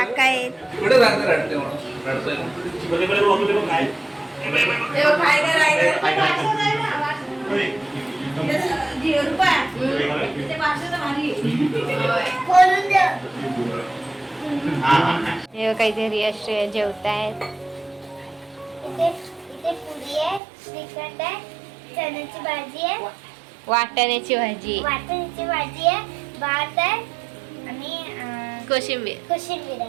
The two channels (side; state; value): left; drops out; at 20.4 s